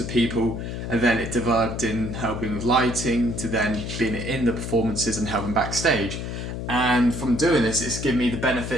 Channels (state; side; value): noise; left; hum, 6 dB below the sound